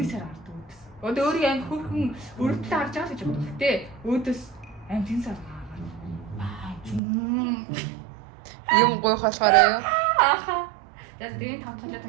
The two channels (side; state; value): left; drops out; at 7.0 s